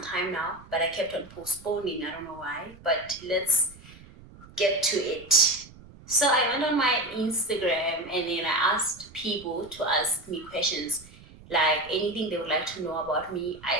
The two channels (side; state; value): right; noise; rumble, 21 dB below the sound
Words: now, but I kept on postponing. I don't know why, but let's get to it. So I went on my Instagram and then I asked people to ask me questions, like anything they would like to know about me.